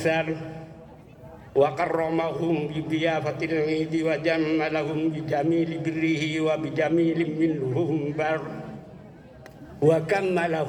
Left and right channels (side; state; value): both; identical; correlation 1.00